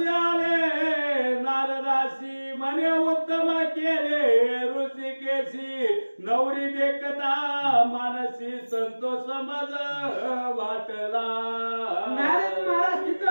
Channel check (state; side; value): inverted; both; correlation -1.00